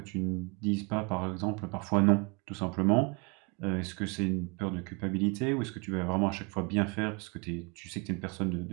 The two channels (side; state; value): left; quieter; 30.8 dB